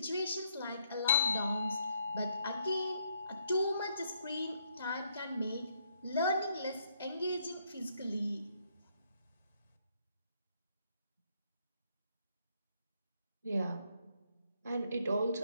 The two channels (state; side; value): inverted; both; correlation -0.72